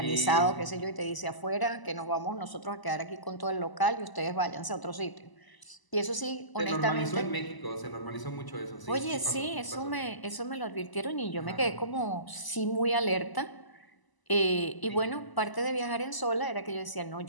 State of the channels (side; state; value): right; late; 1.0 ms